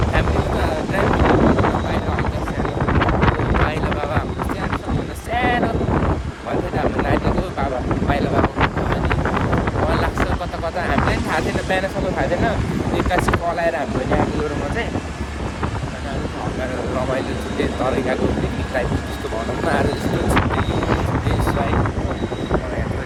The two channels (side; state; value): both; identical; correlation 1.00